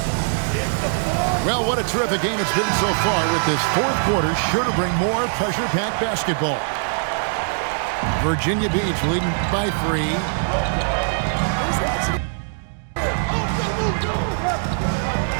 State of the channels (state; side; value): silent; left; digital silence